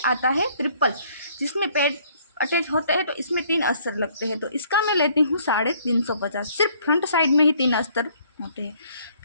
आता है ट्रिपल, जिसमें पैड अटैच होते हैं, तो इसमें 3 अस्तर लगते हैं, तो इसका मैं लेती हूँ 350। सिर्फ फ्रंट साइड में ही 3 अस्तर होते हैं।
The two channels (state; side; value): inverted; both; correlation -0.62